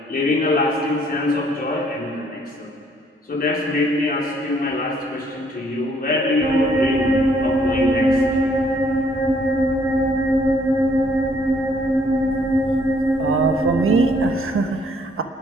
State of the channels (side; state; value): both; normal; correlation 0.65